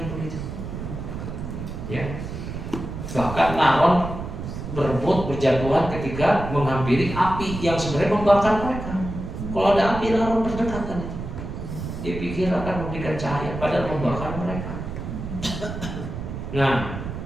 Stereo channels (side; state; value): right; noise; rumble, 7 dB below the sound